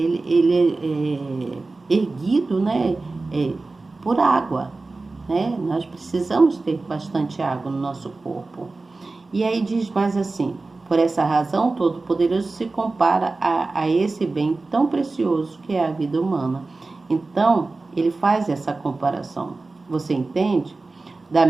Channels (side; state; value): left; quieter; 3.5 dB